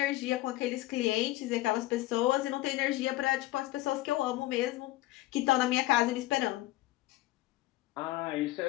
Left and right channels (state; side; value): quieter; right; 17.3 dB